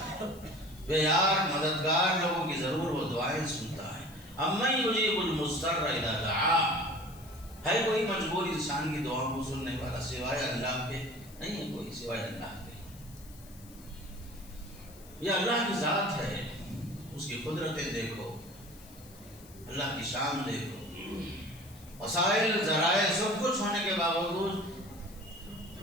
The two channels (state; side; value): noise; left; hiss, 22 dB below the sound